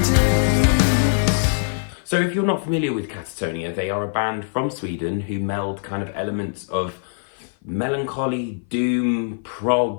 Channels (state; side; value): silent; right; 56 dB below the other